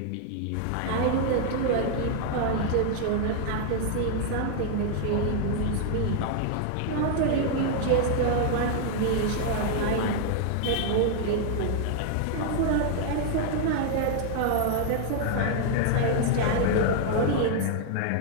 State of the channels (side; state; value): both; different; correlation 0.00